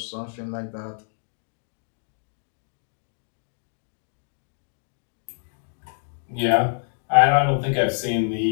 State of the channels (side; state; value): right; silent; digital silence